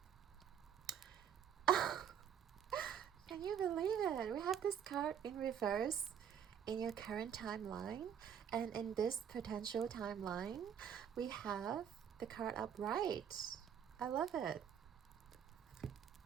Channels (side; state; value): left; quieter; 8.6 dB